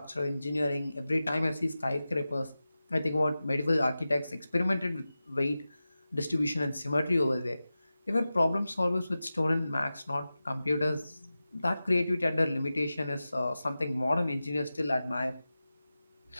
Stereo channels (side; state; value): both; inverted; correlation -0.94